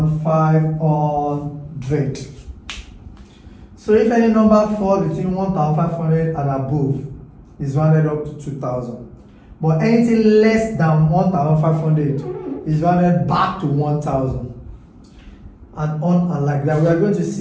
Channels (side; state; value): both; identical; correlation 1.00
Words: So if any number falls between 1,500 and above, is rounded up to 2,000. But anything less than 1,500 is rounded back to 1,000. And on and like that. We are going to